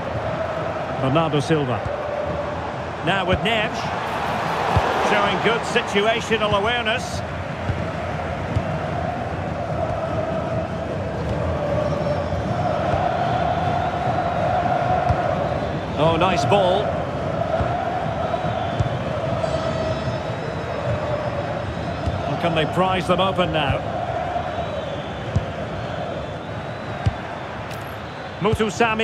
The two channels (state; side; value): identical; both; correlation 1.00